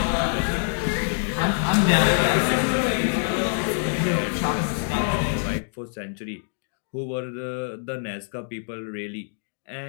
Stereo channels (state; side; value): silent; right; digital silence